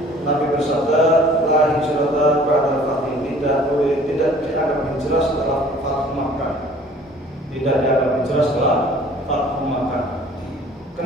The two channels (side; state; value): both; normal; correlation 0.51